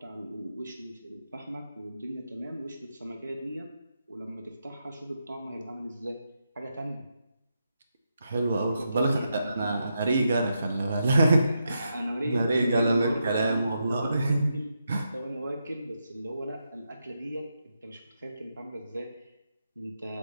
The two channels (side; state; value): both; inverted; correlation -0.84